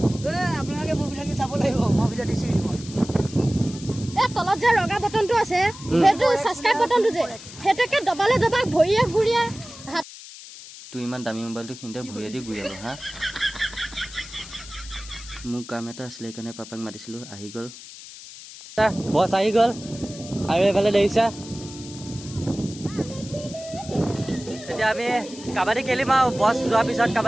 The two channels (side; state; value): left; noise; hiss, 15 dB below the sound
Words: আপোনালোকে মোৰ ভিডিঅ'টো চাব লাগিব মই ভিডিঅ' দিছো তলত যে ৰঙা বটনটো আছে সেইটো সাবস্ক্ৰাইব বটনটো যে হেতেকে দবালে দবা ভৰিয়ে ঘুৰিয়ে তুই ইমান দামী মোবাইলটো খিনতে ভৰিয়ে দি ঘূৰিব হা মোৰ কাম এটা আছিলে কাৰণে পাপাক মাতিছিলো আহি গ'ল বছ আহি গ'ল আৰু এইফালে দেখিছা এতিয়া আমি কাবাডী খেলিম আৰু বছ যোৱাৰ পিছত